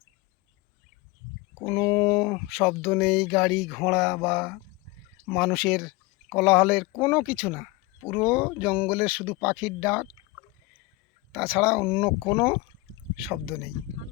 কোনো শব্দ নেই, গাড়ি ঘোড়া বা মানুষের কোলাহলের কোনো কিছু না। পুরো জঙ্গলের শুধু পাখির ডাক, তাছাড়া অন্য কোনো শব্দ নেই।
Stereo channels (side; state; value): right; quieter; 21.4 dB